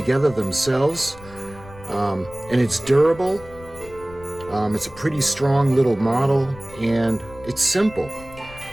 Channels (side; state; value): left; noise; rumble, 19 dB below the sound